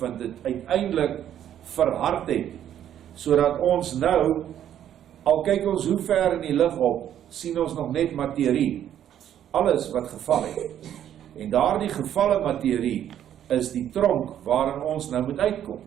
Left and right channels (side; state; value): left; quieter; 10.5 dB